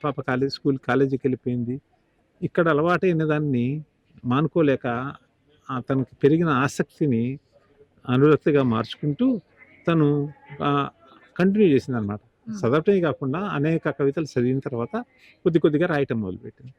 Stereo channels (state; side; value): identical; both; correlation 1.00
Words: పాప కాలేజీకి వెళ్ళిపోయింది. ఇక్కడ అలవాటైన దాన్ని మానుకోలేక తనకి పెరిగిన ఆసక్తిని అనురక్తిగా మార్చుకుంటూ తను కంటిన్యూ చేసింది అనమాట. చదవటమే కాకుండా అనేక కవితలు చదివిన తర్వాత కొద్దిగా రాయటం మొదలుపెట్టింది.